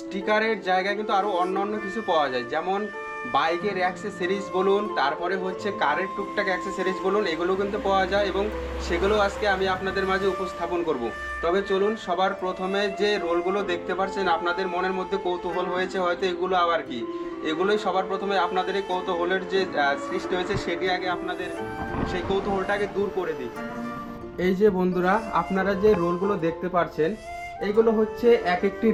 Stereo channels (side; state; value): both; identical; correlation 1.00